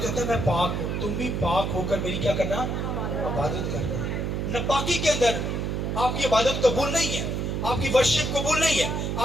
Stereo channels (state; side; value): noise; right; hum, 1 dB below the sound